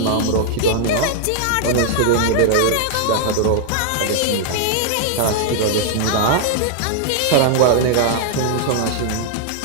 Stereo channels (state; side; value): different; both; correlation -0.01